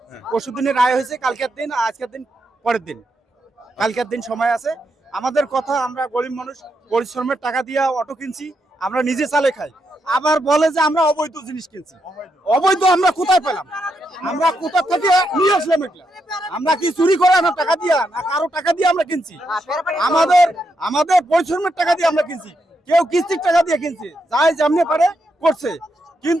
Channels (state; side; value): normal; both; correlation 0.81